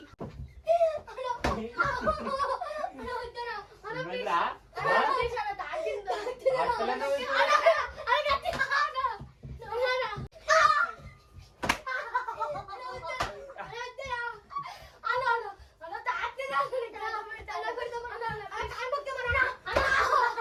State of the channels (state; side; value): identical; both; correlation 1.00